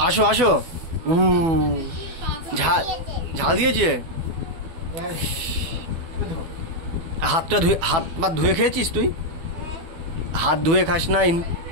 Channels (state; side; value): late; left; 12 ms